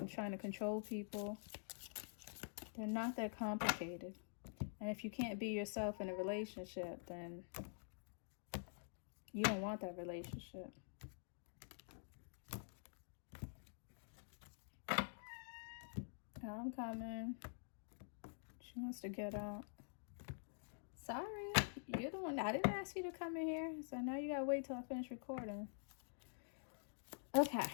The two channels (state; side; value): silent; right; digital silence